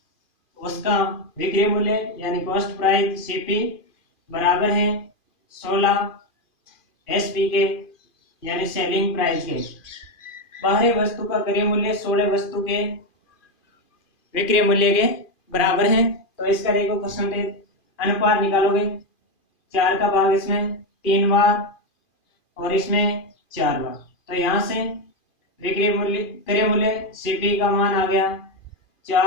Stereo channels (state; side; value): late; right; 2.4 ms